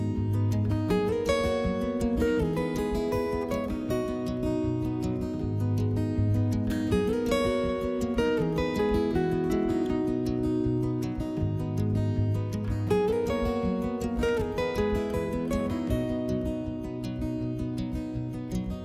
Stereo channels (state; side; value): identical; both; correlation 1.00